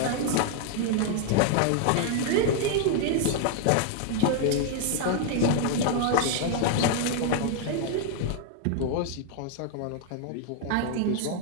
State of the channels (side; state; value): both; different; correlation 0.00